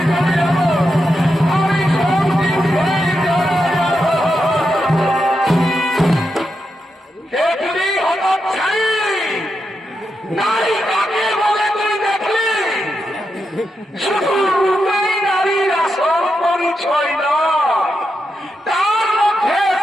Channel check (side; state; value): both; normal; correlation 0.86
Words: যাবে, আমি সত্যি হয়ে যাবে। দেখলি হঠাৎ ছাই নারী কাকে বলে তুই দেখলি? শুধু রূপেই নারীর আসল পরিচয় নয়, তার মধ্যে